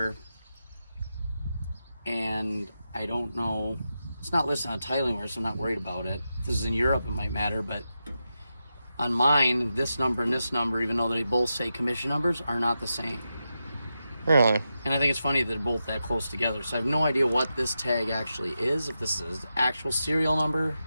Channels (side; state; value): both; inverted; correlation -0.89